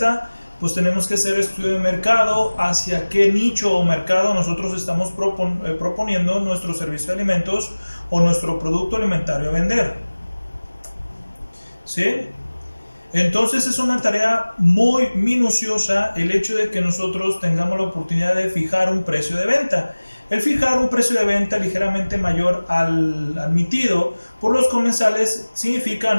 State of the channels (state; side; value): inverted; both; correlation -1.00